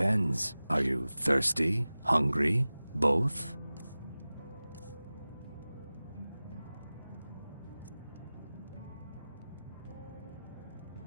Are you thirsty? Hungry? Both?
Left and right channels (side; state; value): both; inverted; correlation -0.97